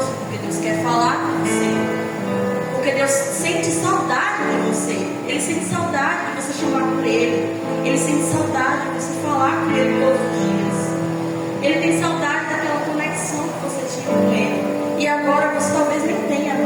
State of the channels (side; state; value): both; identical; correlation 1.00